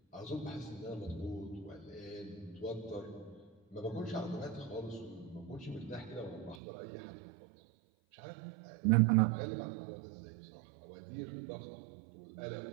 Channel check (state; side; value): drops out; left; at 6.6 s